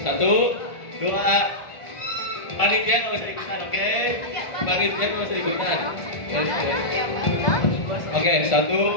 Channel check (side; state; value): right; late; 1.4 ms